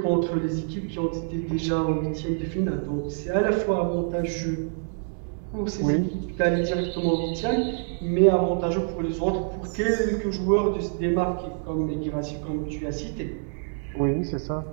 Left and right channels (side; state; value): left; silent; digital silence